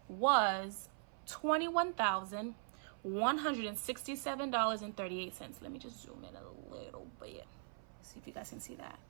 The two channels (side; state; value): left; silent; 51 dB below the other